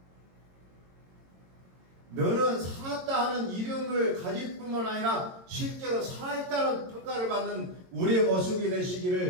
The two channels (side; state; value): left; late; 22 ms